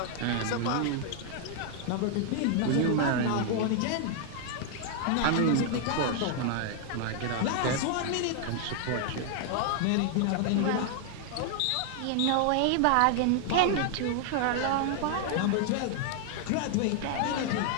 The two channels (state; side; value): different; both; correlation 0.00